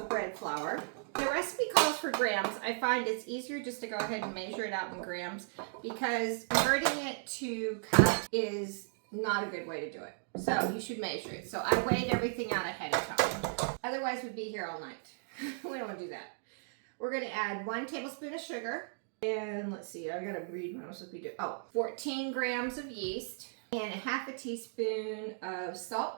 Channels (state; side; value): silent; left; digital silence